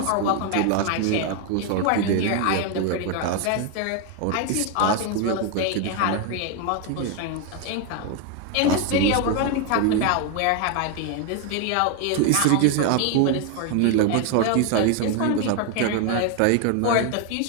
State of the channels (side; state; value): both; different; correlation 0.01